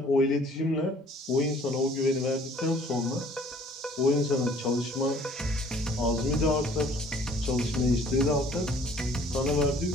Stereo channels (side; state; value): both; normal; correlation 0.55